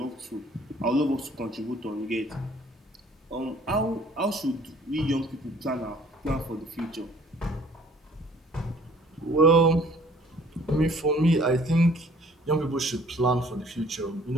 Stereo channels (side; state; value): both; normal; correlation 0.56